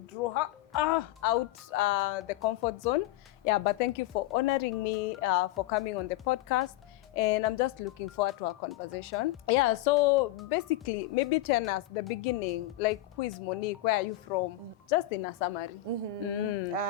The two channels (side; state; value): right; quieter; 14.7 dB